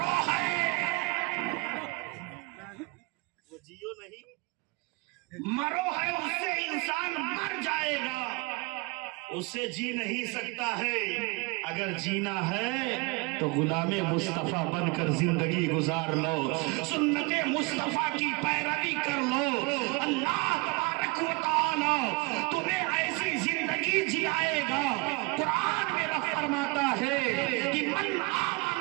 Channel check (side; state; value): left; quieter; 27.4 dB